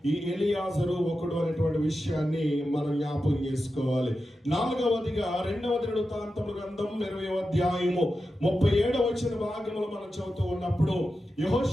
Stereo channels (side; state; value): both; normal; correlation 0.91